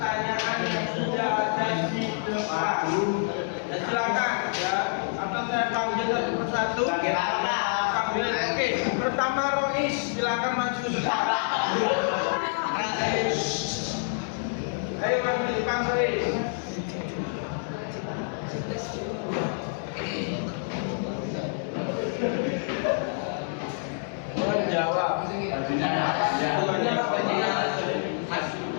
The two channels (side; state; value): right; silent; digital silence